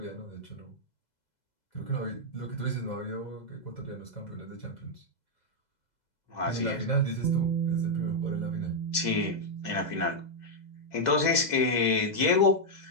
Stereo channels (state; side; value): late; right; 2.0 ms